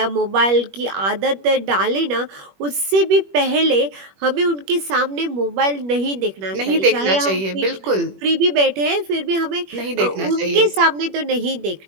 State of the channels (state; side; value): late; left; 21 ms